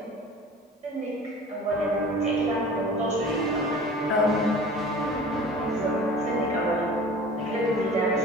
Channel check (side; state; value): both; normal; correlation 0.42